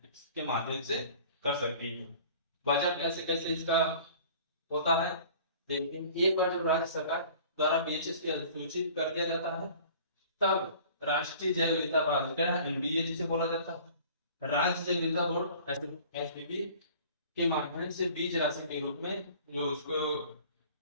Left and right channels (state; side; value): inverted; both; correlation -0.47